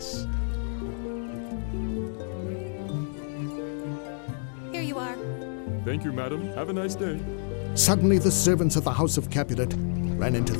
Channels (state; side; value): silent; right; digital silence